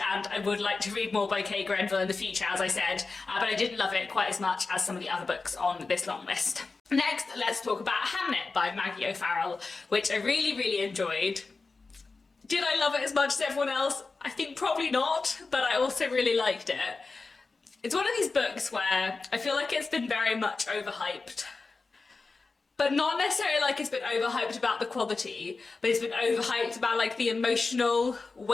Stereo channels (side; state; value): right; quieter; 4.0 dB